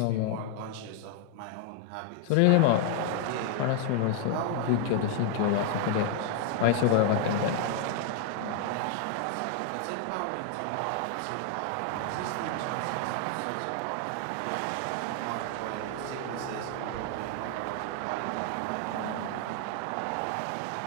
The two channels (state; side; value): different; both; correlation 0.00